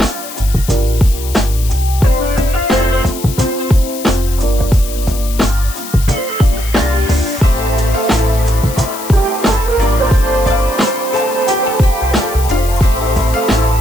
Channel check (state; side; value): noise; left; hiss, 12 dB below the sound